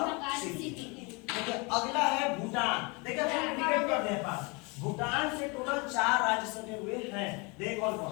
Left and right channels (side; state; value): right; quieter; 29.1 dB